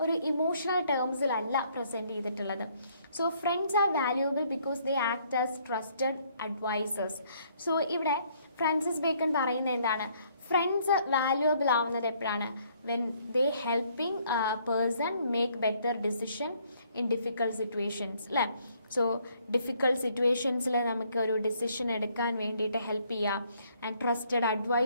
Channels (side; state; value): both; inverted; correlation -0.66